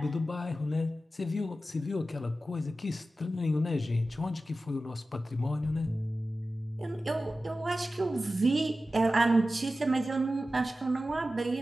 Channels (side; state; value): both; normal; correlation 0.94